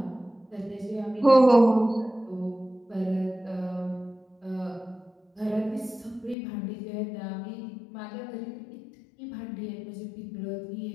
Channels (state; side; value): drops out; right; at 6.4 s